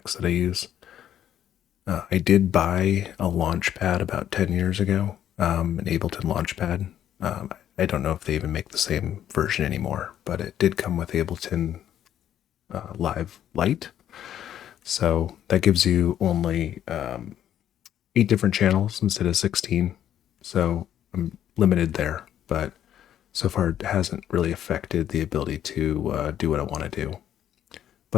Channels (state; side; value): quieter; right; 10.7 dB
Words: that I use. I did buy a Launchpad about 10 years ago, an Ableton Launchpad. I don't know if they even make the same version anymore, but it did come with Ableton Live Lite. So that gives you only 8 different channels instead of 16. So I'm limited there, but so far it hasn't really affected the ability to do what I want to do.